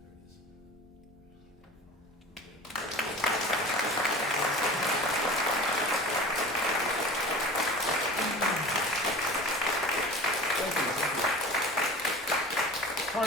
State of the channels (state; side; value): normal; both; correlation 0.37